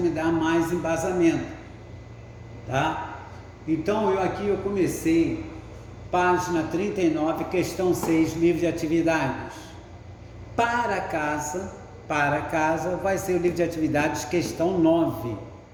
dá mais embasamento, tá? Então, eu comecei, página 39, questão 6, livro de atividades. Para casa, vai ser o livro de atividades, questão 9,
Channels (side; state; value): both; identical; correlation 1.00